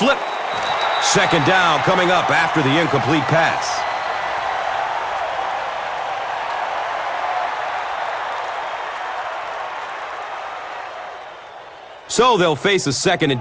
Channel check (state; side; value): identical; both; correlation 1.00